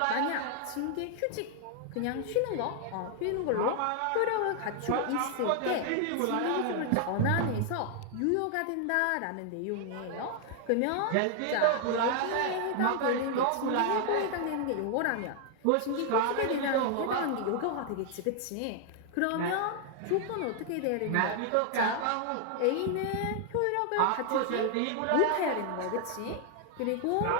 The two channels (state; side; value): different; both; correlation 0.00